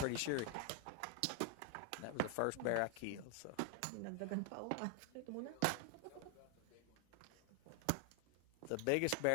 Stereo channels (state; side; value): different; both; correlation 0.00